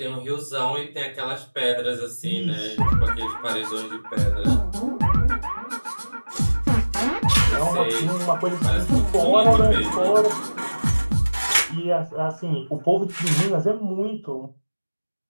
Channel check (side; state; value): both; inverted; correlation -1.00